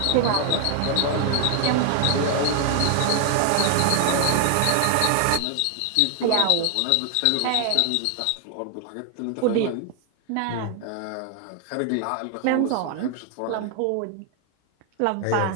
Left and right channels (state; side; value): different; both; correlation 0.00